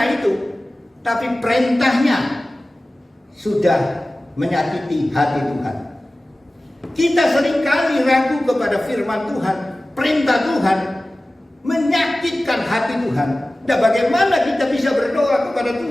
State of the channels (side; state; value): both; normal; correlation 0.97